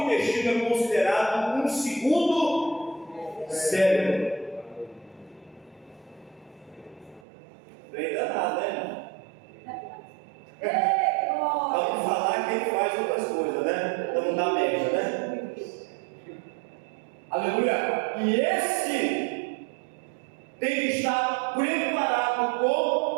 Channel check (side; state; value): left; drops out; at 7.2 s